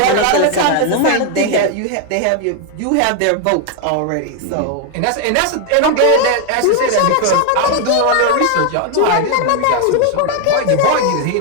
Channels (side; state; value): both; different; correlation 0.00